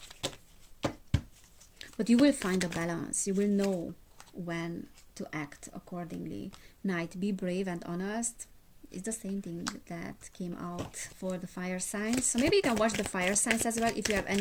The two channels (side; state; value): both; identical; correlation 1.00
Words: But you will find a balance. You will know when to act accordingly. Knight, be brave and honest. It's the same thing that came out for the fire signs. So maybe you can watch the fire signs as well if you have